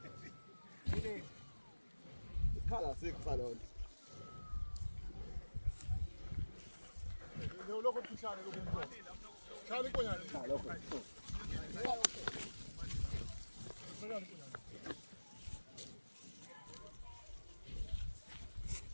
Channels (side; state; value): both; inverted; correlation -1.00